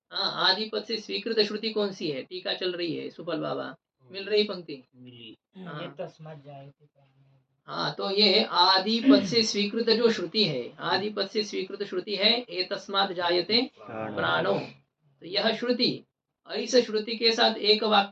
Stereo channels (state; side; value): identical; both; correlation 1.00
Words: हाँ, आदि पद से स्वीकृत श्रुति कौन सी है? टीका चल रही है, सुफल बाबा मिल रही पंक्ति? हाँ, तस्मात् जायते। हाँ, तो ये आदि पद से स्वीकृत जो श्रुति है, आदि पद से स्वीकृत श्रुति है एतस्मात् जायते प्राणो, तो यह श्रुति, और इस श्रुति के साथ एक